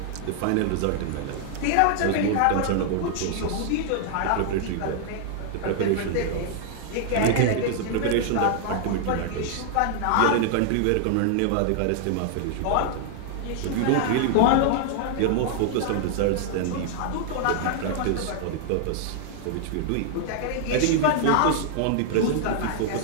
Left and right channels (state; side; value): different; both; correlation 0.00